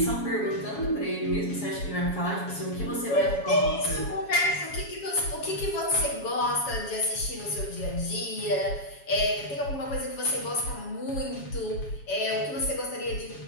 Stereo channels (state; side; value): late; right; 7.2 ms